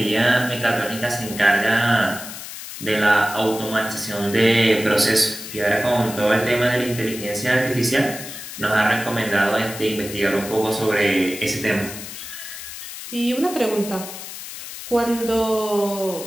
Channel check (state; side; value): noise; left; hiss, 11 dB below the sound